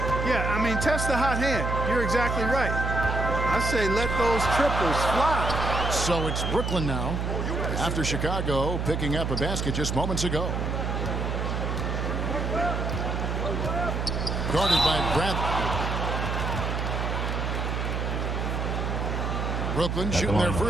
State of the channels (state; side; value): noise; right; hum, 1 dB below the sound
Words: Yeah, I mean, test the hot hand. You're exactly right. I say let those triples fly. So it's Brooklyn now, after Chicago picking up a basket just moments ago. Guarded by Bradley. Brooklyn shooting their